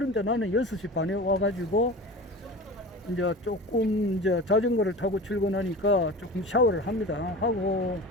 나는 6시 반에 와가지고 이제 조금 이제 자전거를 타고 출근하니까 조금 샤워를 합니다. 하고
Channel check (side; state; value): both; normal; correlation 0.33